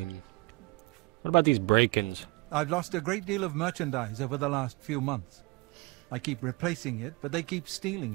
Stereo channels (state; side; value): quieter; left; 24.8 dB